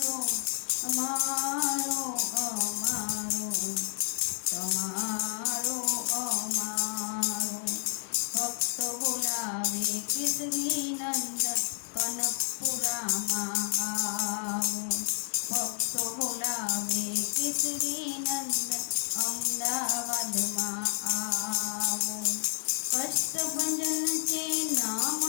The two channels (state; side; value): silent; right; digital silence